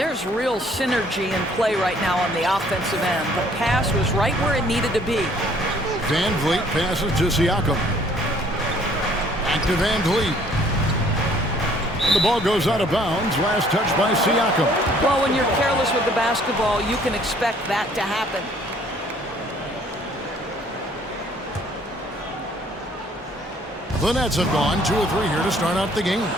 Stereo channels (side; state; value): both; normal; correlation 0.59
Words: real synergy in play right now on the offensive end. The pass was right where it needed to be. VanVleet passes to Siakam. Back to VanVleet. And the ball goes out of bounds. Last touch by Siakam. Well, when you're careless with the basketball, you can expect that to happen. The Nets have gone 2 of 3 here to start out the game.